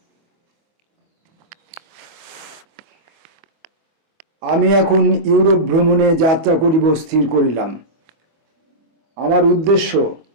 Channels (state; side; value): late; left; 25 ms